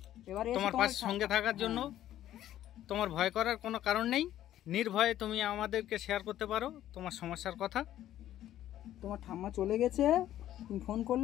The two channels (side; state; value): right; quieter; 12.5 dB